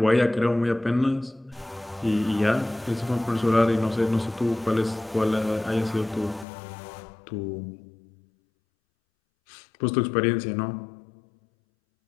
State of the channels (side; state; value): right; drops out; at 6.5 s